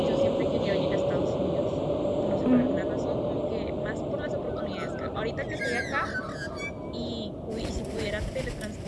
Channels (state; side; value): identical; both; correlation 1.00